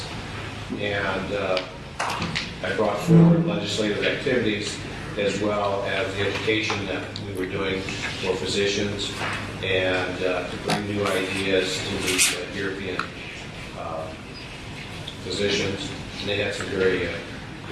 And I brought forward legislative activities as well as the education that we were doing for physicians and to bring new ideas to the European physicians. And they had some very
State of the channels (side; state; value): both; identical; correlation 1.00